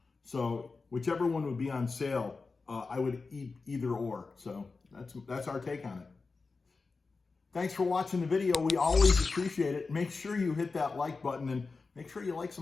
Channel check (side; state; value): right; quieter; 4.2 dB